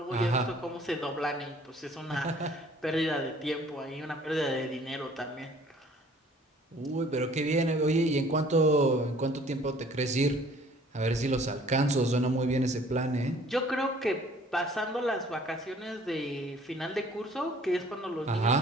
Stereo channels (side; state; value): both; normal; correlation 0.54